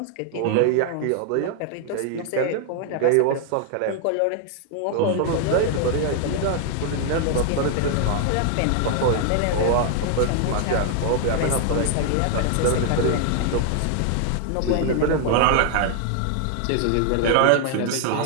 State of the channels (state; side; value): different; both; correlation 0.00